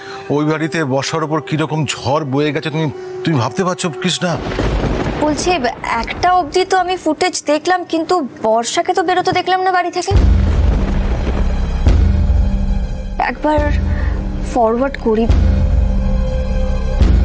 ওই বাড়িতে বর্ষার ওপর কিরকম ঝড় বয়ে গেছে তুমি ভাবতে পারছো কৃষ্ণা? বলছি একটা অবধি তো আমি ফুটেজ দেখলাম, কিন্তু বর্ষাকে তো বেরোতে দেখলাম না বাড়ি থেকে। একবার ফরওয়ার্ড করি।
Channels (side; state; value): both; identical; correlation 1.00